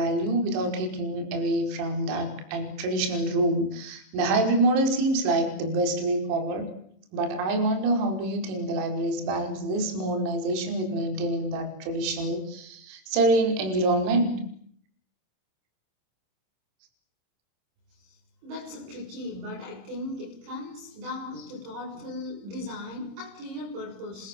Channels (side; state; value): left; late; 27 ms